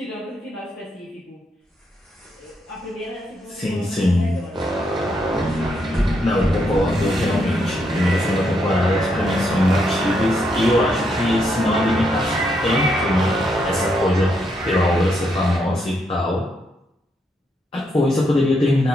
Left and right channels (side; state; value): both; normal; correlation 0.78